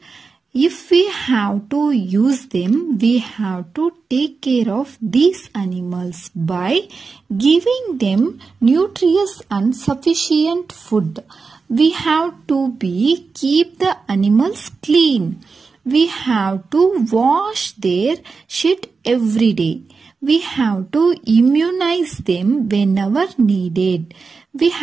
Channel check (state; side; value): quieter; left; 4.6 dB